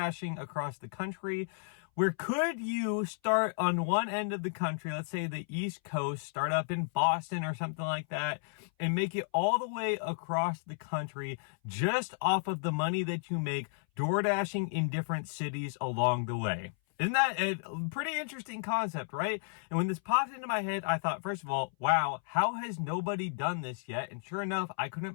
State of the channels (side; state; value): right; silent; 56 dB below the other